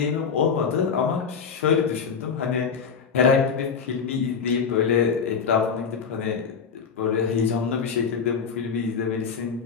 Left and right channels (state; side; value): quieter; right; 6.2 dB